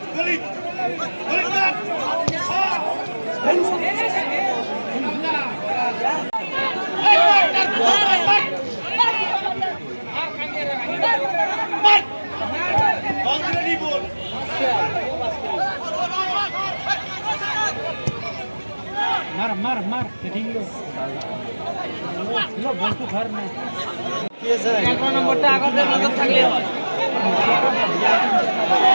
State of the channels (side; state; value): both; inverted; correlation -1.00